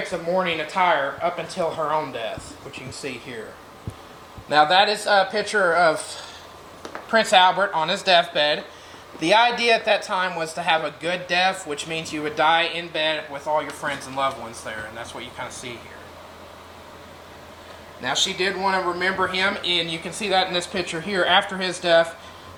of mourning attire up until her own death, which you can see here. Now that is a picture of Prince Albert on his deathbed. The idea at that time was to have a good death, which means you would die in bed with all your friends and loved ones there, and that's what you kind of see here. Now she did want to remember him, and you can see that in this picture here after his death.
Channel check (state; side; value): identical; both; correlation 1.00